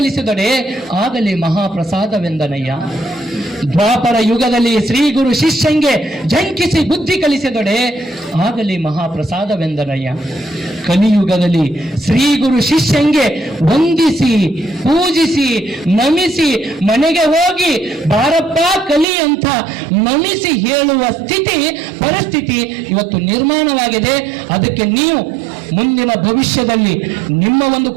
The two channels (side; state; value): left; drops out; at 19.1 s